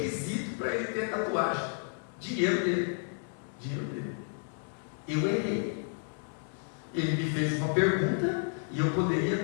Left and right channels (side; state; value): right; silent; 57 dB below the other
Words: para ele ter tatuagem. Dinheiro dele. Eu errei. Ele me fez uma pergunta e eu